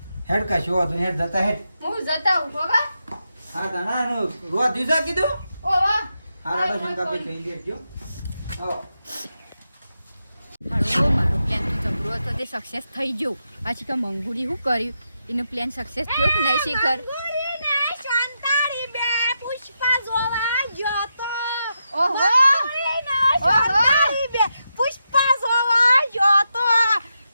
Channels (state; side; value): inverted; both; correlation -0.86